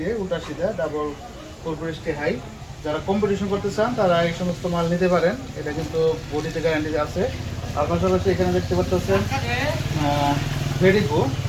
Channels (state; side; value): identical; both; correlation 1.00